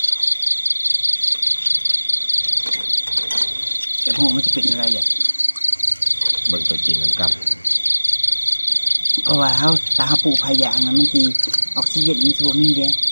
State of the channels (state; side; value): inverted; both; correlation -1.00